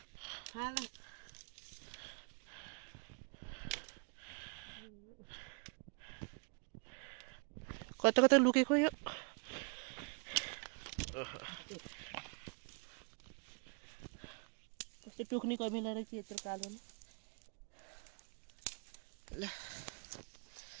कता कता लुकेको यो कस्तो टोक्ने कमिला रहेछ यत्रो कालो नि ल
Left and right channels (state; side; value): quieter; left; 36.9 dB